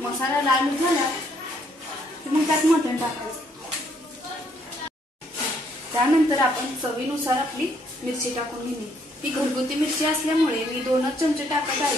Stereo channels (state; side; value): normal; both; correlation 0.69